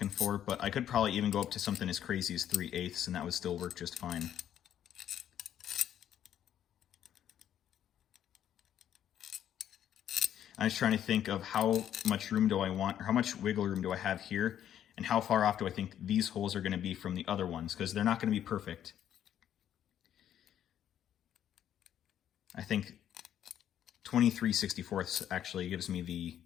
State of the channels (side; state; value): right; quieter; 10.4 dB